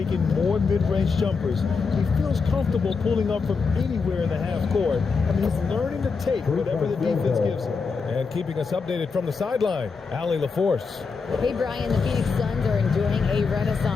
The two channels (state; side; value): quieter; right; 5.0 dB